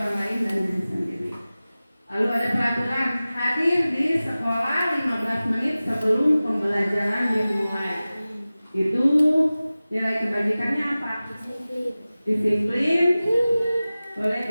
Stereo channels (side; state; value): both; inverted; correlation -0.97